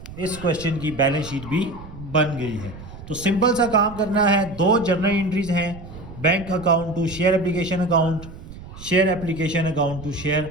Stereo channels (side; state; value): right; noise; rumble, 15 dB below the sound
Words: इस क्वेश्चन की बैलेंस शीट भी बन गई है। तो सिंपल सा काम करना है, 2 जर्नल एंट्रीज हैं, bank account to share application account, share application account to share